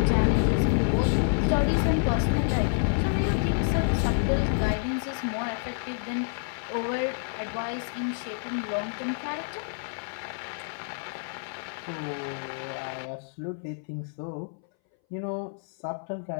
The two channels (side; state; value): right; silent; 59 dB below the other